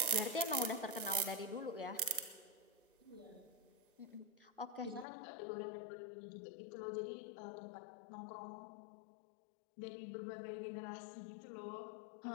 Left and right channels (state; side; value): drops out; right; at 5.1 s